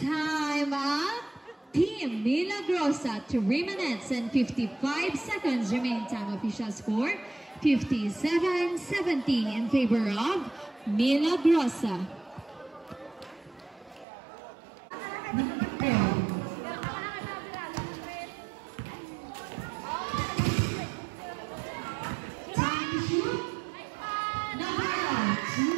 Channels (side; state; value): left; drops out; at 14.1 s